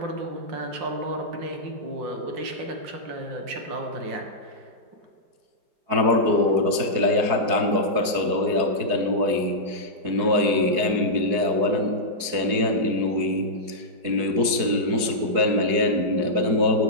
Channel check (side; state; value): left; late; 4.7 ms